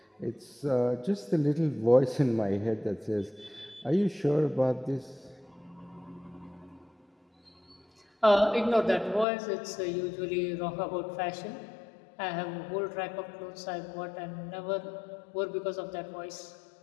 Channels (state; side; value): drops out; right; at 9.2 s